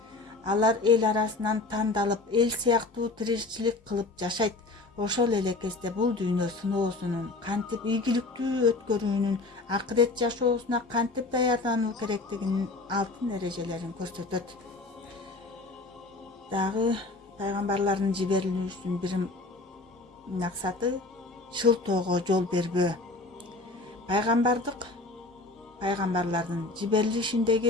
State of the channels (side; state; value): right; quieter; 3.3 dB